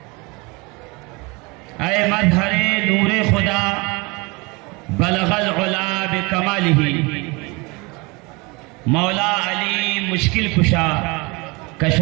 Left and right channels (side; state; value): left; quieter; 26.8 dB